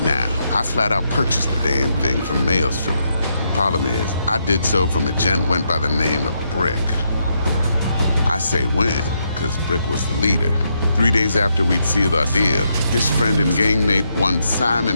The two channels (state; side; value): inverted; both; correlation -0.79